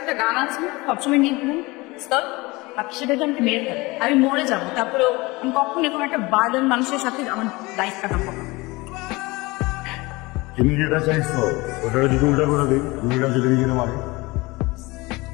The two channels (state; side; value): quieter; right; 23.0 dB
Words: একটা গান আছে সবসময় নিয়ে ঘুম আপনি সেটাকে আমাকে মেরে ফেলেন, আমি মরে যাবো, তারপরেও আমি কখন এরকম একটা বার্ডেন মানুষের সাথে আমার লাইফ কাটাবো। তুমি যেটা চাইছো ওটা যদি উল্টা করে দিই দুইটা যদি নিজের মারে